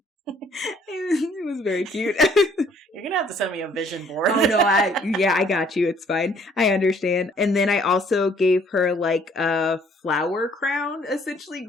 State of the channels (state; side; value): normal; both; correlation 0.61